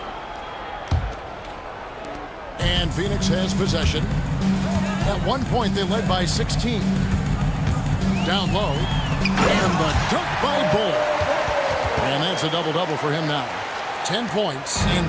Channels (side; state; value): both; identical; correlation 1.00